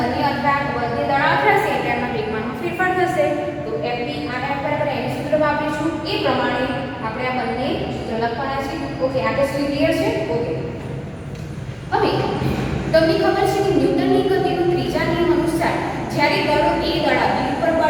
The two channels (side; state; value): both; identical; correlation 1.00